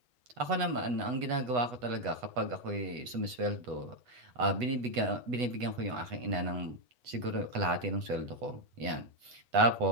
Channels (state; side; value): late; left; 8.1 ms